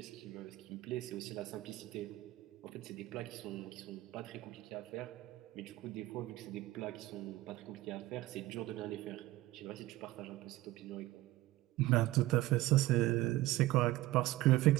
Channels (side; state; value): left; quieter; 17.2 dB